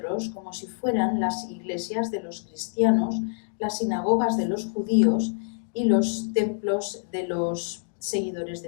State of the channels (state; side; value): silent; right; digital silence